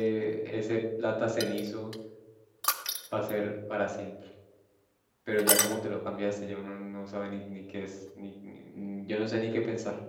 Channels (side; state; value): both; identical; correlation 1.00